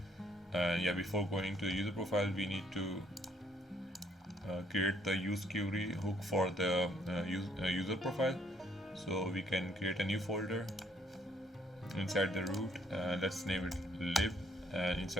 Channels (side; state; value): both; normal; correlation 0.66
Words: Yeah, before going to the user profile, we need to create the use query hook for the user profile. So we can create a new folder inside the root. Let's name it lib. And